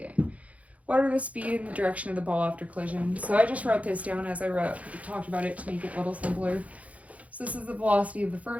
What are the speed and the direction of the ball after collision? So I just wrote this down as I talked about it to make it a little simpler. So this is the velocity of the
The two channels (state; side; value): late; left; 0.067 ms